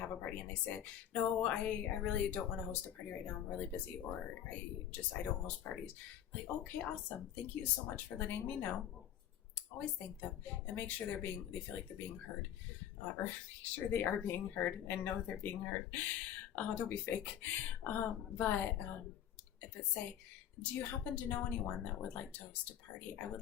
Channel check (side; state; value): right; quieter; 10.4 dB